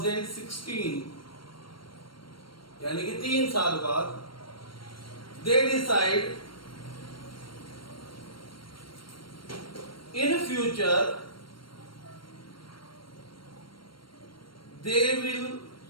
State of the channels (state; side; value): late; right; 0.73 ms